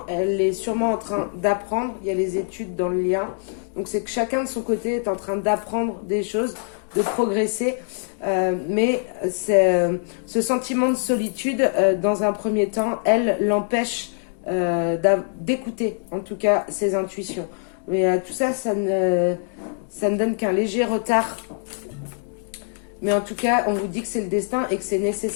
elle est sûrement en train d'apprendre. Il y a les études dans le lien. Donc, c'est que chacun de son côté est en train d'apprendre des choses, de progresser. Mais ce sentiment de solitude, dans un premier temps, elle l'empêche d'écouter, en tout cas, ses intuitions. Mais tout ça, ça ne donne qu'un léger retard. Mais en tout cas, on vous dit que c'est le destin et que c'est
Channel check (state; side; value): silent; right; 63 dB below the other